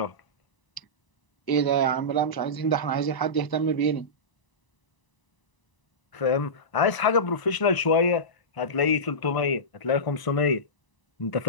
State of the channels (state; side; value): late; right; 1.0 ms